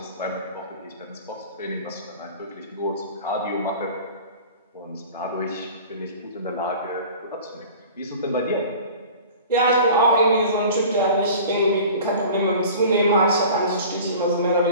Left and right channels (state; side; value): inverted; both; correlation -0.41